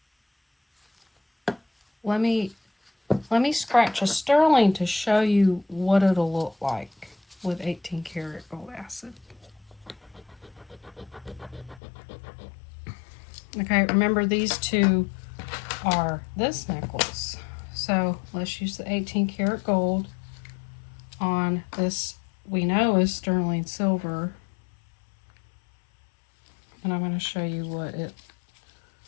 let me scratch a sterling to show you what it'll look like with 18 karat gold acid. Okay, remember these two are this necklace. So let's use the 18 karat gold on this we know is sterling silver. And I'm going to show you what it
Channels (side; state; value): right; drops out; at 11.8 s